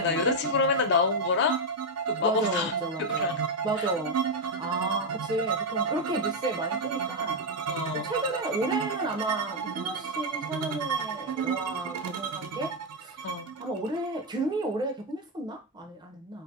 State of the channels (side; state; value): both; normal; correlation 0.02